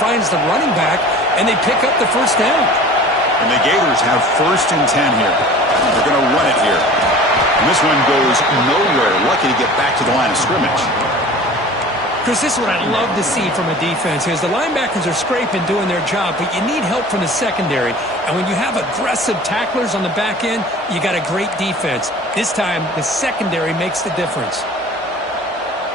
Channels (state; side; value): normal; both; correlation 0.42